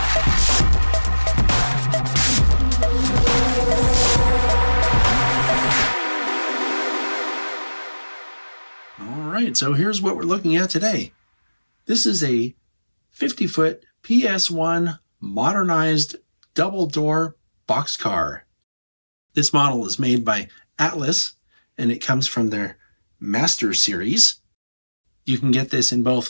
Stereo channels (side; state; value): both; inverted; correlation -1.00